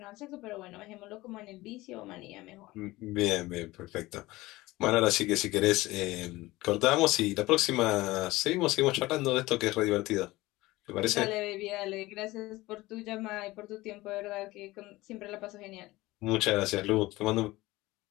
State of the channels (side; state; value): right; quieter; 19.2 dB